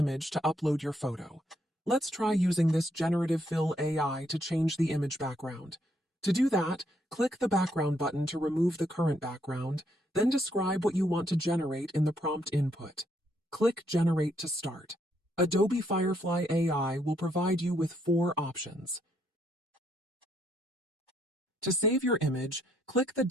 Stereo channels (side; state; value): both; normal; correlation 0.73